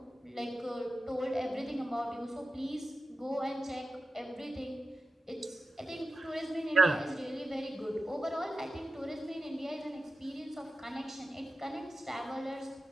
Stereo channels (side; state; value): both; normal; correlation 0.92